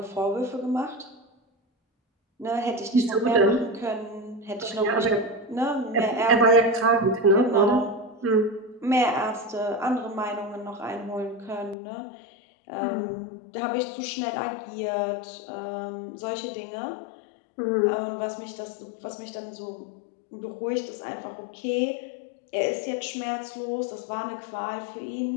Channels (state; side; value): drops out; right; at 11.8 s